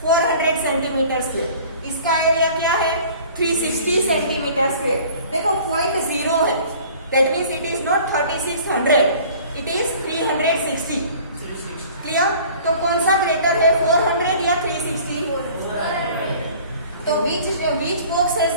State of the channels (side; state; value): both; inverted; correlation -0.48